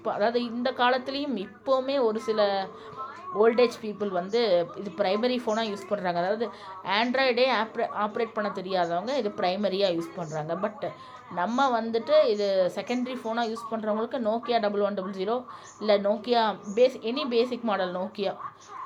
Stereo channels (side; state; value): both; identical; correlation 1.00